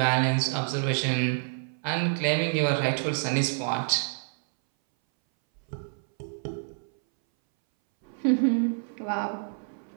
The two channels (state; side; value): silent; left; 60 dB below the other